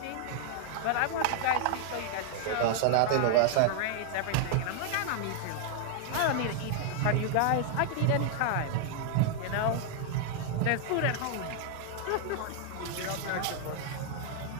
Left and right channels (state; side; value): different; both; correlation 0.00